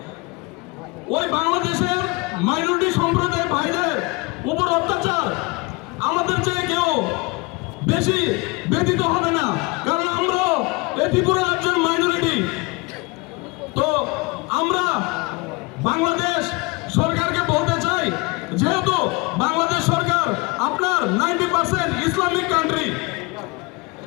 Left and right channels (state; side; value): quieter; right; 26.3 dB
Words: ওই বাংলাদেশের মাইনরিটি সম্প্রদায় ভাইদের উপর অত্যাচার আমাদের চেয়ে কেউ বেশি ব্যতীত হবে না, কারণ আমরা এই ত্রিপুরা রাজ্যের মাইনরিটি। তো আমরা বাংলাদেশ সরকারকে বলতে চাই, যেহেতু বাংলাদেশ সরকার আপনার 90% ইসলামিক কান্ট্রি,